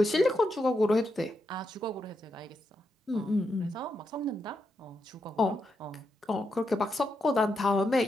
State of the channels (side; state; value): both; normal; correlation 0.83